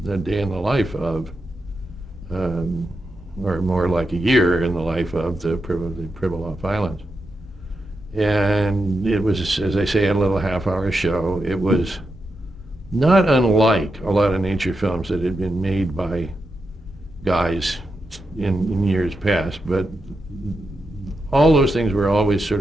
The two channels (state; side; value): normal; both; correlation 0.87